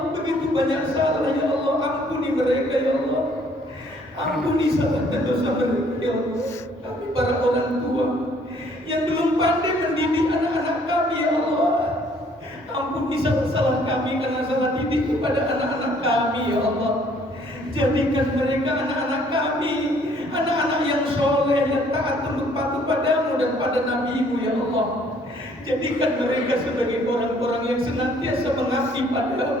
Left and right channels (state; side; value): normal; both; correlation 0.61